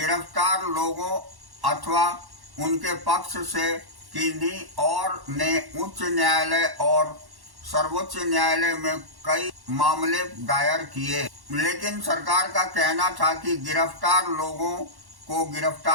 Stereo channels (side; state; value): left; late; 1.1 ms